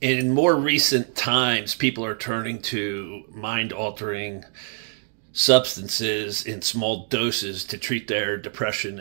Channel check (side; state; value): left; silent; digital silence